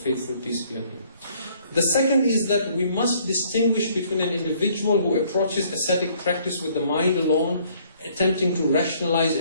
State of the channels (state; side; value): inverted; both; correlation -0.62